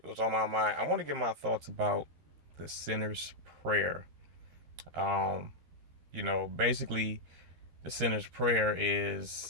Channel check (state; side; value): late; left; 13 ms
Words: was on my mind. I want to get my thoughts about the sinner's prayer. Um, basically the sinner's prayer